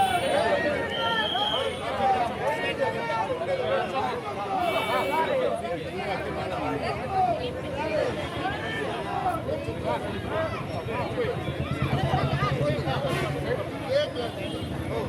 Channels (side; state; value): both; identical; correlation 1.00